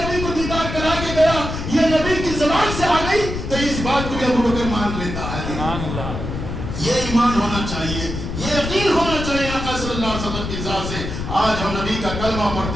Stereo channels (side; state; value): left; noise; rumble, 6 dB below the sound